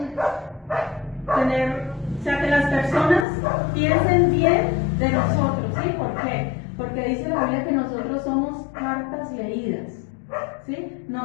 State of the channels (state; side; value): drops out; right; at 3.2 s